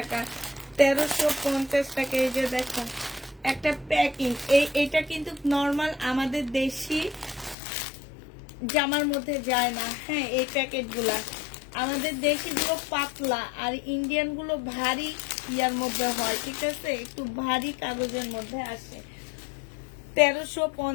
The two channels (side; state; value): right; drops out; at 7.6 s